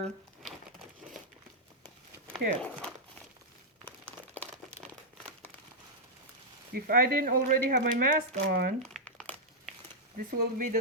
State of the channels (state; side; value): normal; both; correlation -0.06